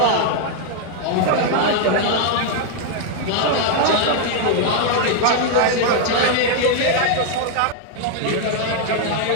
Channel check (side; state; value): both; different; correlation 0.00